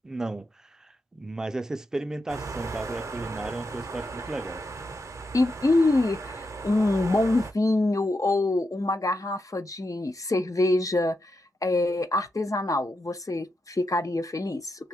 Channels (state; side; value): normal; both; correlation 0.85